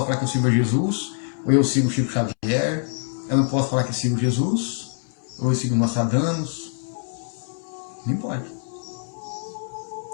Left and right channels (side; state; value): right; silent; 62 dB below the other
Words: falar que eu sirvo a Jesus, ou eu sigo o Chico Xavier. Eu não posso falar que eu sigo Jesus, ou eu sigo Nostradamus. Não importa.